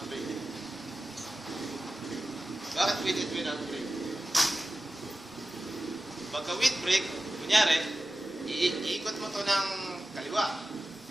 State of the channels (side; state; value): both; normal; correlation 0.94